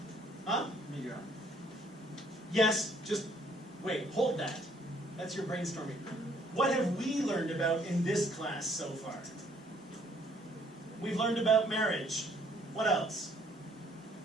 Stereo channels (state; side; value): normal; both; correlation 0.63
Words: Huh? Yes, just wait, hold that. That's your brainstorming. What have we learned about in this class so far? We've learned about marriage. What else?